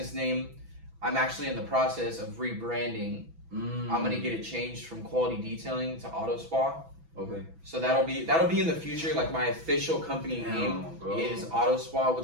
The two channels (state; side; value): late; left; 6.1 ms